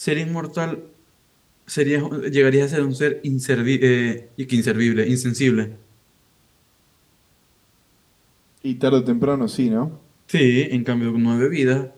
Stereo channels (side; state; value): both; identical; correlation 1.00